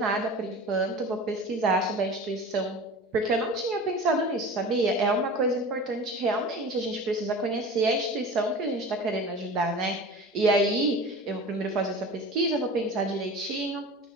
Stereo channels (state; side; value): normal; both; correlation 0.36